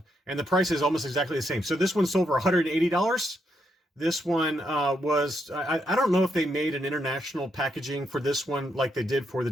and the price is almost exactly the same. So this one sold for $180. This one was, I don't know if they made an international packaging for this one like they did for the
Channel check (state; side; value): normal; both; correlation 0.78